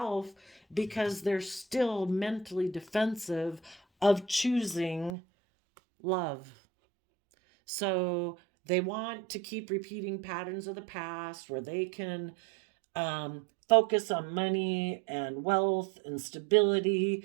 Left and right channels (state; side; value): drops out; left; at 5.2 s